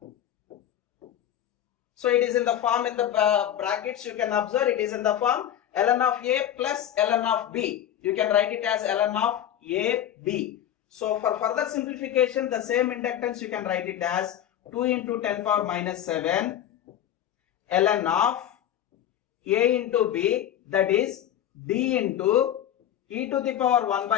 So it is in the form, in the brackets you can observe it is in the form ln of a plus ln of b. You can write it as ln of a b. So for further simplification, the same inductance you can write it as 2 into 10 power minus 7 ln of a into b, that is d into e to the power 1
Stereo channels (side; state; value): right; quieter; 10.9 dB